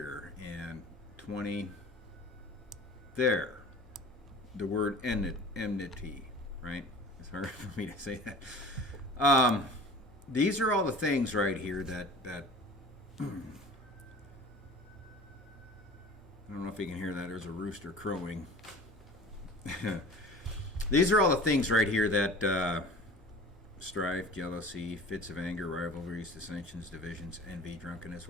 and 20. There, the word enmity, right? It's hard for me to say that. These are all the things right here that I don't know if you can hear that. There's a rooster crowing. These are all the things right here that strife, jealousy, fits of anger, rivalries, dissensions, divisions, envy, drunkenness,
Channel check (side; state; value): both; normal; correlation 0.41